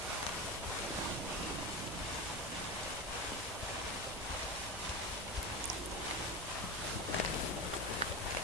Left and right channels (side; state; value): both; normal; correlation 0.22